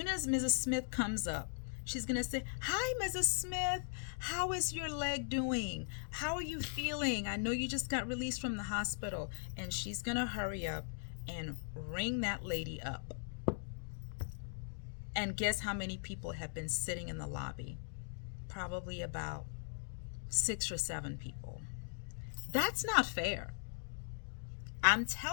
as Mrs. Smith comes up, she's going to say, hi, Mrs. Smith. How is your leg doing? How are you feeling? I know you just got released from the hospital. And she's going to hurry up and ring that lady up. And guess how many people have been sitting in the lobby? Probably about 6 or 7 people. That's not fair. I'm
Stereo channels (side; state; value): right; silent; digital silence